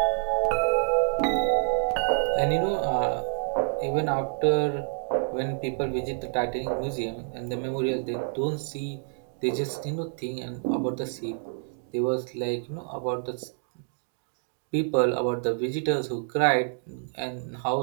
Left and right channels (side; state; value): left; silent; digital silence